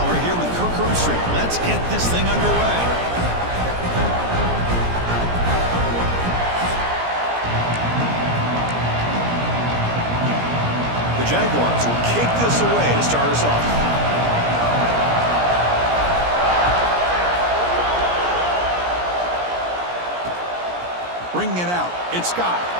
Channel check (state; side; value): late; left; 17 ms